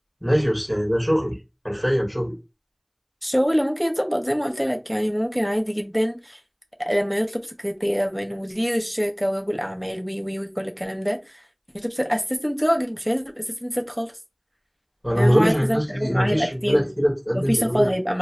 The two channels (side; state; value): both; identical; correlation 1.00